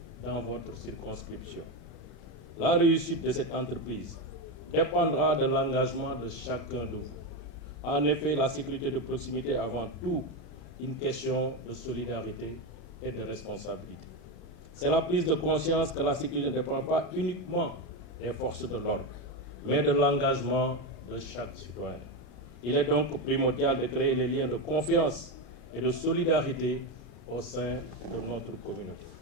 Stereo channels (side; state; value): right; late; 33 ms